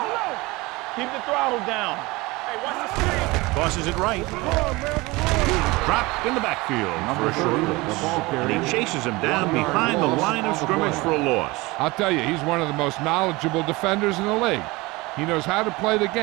Keep the throttle down. Hey, watch the screen. Tosses it right. Dropped in the backfield for a short loss. And he chases him down behind the line of scrimmage for a loss. I'll tell you, he's one of the most knowledgeable defenders in the league. He knows how to play the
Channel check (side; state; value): left; quieter; 22.6 dB